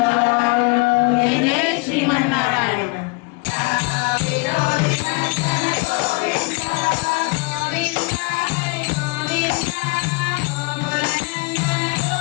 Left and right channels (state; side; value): quieter; right; 28.5 dB